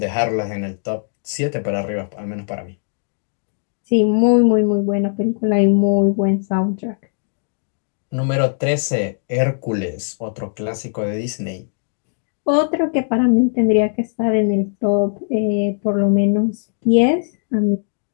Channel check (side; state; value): right; silent; digital silence